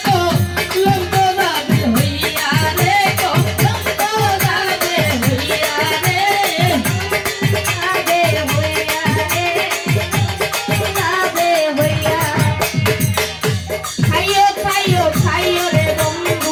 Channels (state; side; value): identical; both; correlation 1.00